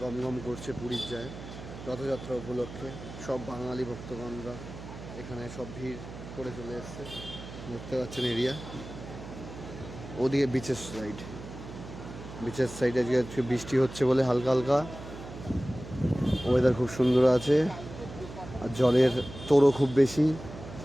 গমগম করছে পুরীর যায় রথযাত্রা উপলক্ষে। সব বাঙালি ভক্তগণরা এখানে সব ভিড় করে চলে এসছে। দেখতে পাচ্ছেন এরিয়া। ওদিকে বিচের সাইডে আজকে বৃষ্টি হচ্ছে বলে হালকা হালকা ওয়েদার খুব সুন্দর আছে। আর জলের তোড়ও খুব বেশি,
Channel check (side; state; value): right; noise; hum, 13 dB below the sound